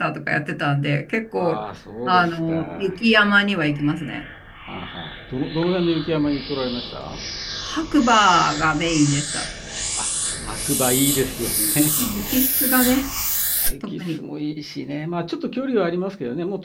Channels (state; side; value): identical; both; correlation 1.00